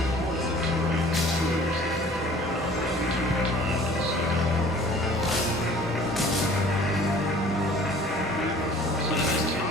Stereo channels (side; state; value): both; normal; correlation 0.50